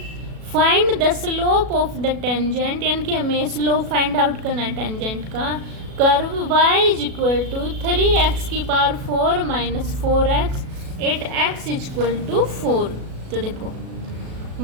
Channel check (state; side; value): late; left; 37 ms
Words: find the slope of the tangent, यानी कि हमें स्लोप फाइंड आउट करना है टेंजेंट का, curve y is equal to 3x की power 4 minus 4x 8x is equal to 4। तो देखो